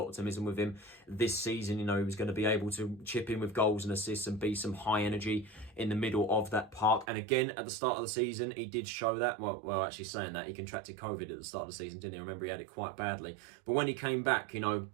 with him this season. He was going to be able to chip in with goals and assists and be some high energy in the middle of that park. And again, at the start of the season, he did show that. Well, actually saying that, he contracted COVID at the start of the season, didn't he? I remember he had it quite badly. But when he came back,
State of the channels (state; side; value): drops out; left; at 7.1 s